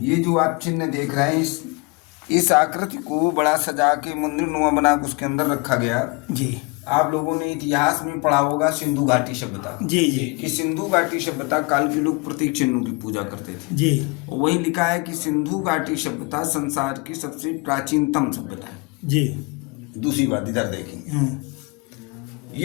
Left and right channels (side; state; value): right; quieter; 28.6 dB